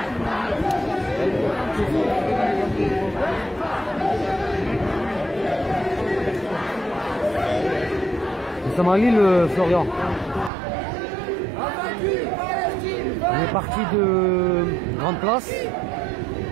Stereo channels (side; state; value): left; drops out; at 10.5 s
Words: Nous sommes à Lille, Florian. On est parti de Grande Place.